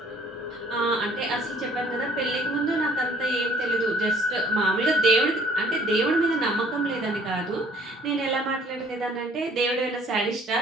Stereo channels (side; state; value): both; normal; correlation 0.57